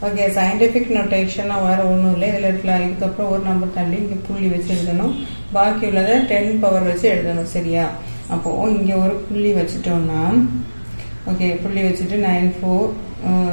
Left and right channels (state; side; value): inverted; both; correlation -1.00